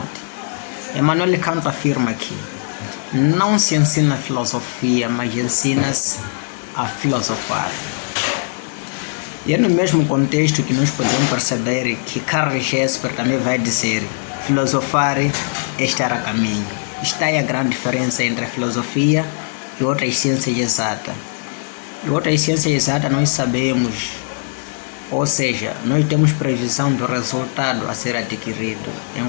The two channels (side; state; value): right; silent; digital silence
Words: Emmanuel Kant afirma que não se ensina filosofia, mas ensina-se a filosofar. E é no mesmo contexto que nós podemos perceber que Karl Jesper também vai dizer: filosofar é estar a caminho. Está aí a grande diferença entre a filosofia e outras ciências exatas. E outras ciências exatas nós sabemos, ou seja, nós temos previsão do resultado a ser adquirido,